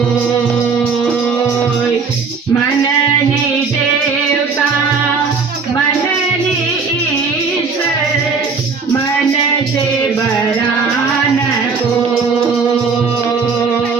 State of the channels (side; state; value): left; quieter; 5.1 dB